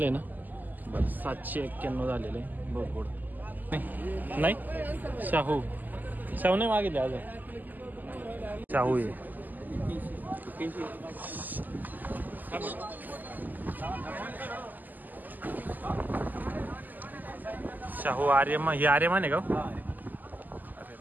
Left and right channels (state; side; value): late; left; 0.085 ms